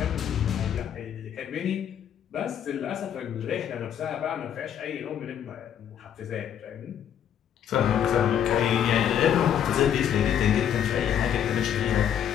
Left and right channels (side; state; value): right; quieter; 9.3 dB